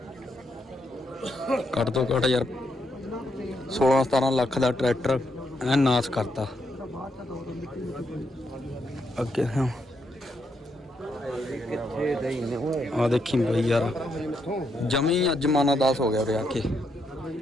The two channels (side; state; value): both; normal; correlation 0.79